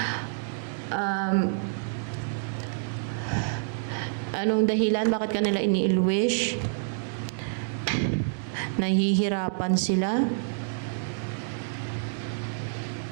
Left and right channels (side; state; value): left; silent; digital silence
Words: Anong dahilan? Bakit ka nila ini-ill-wish? Nahihirapan sila?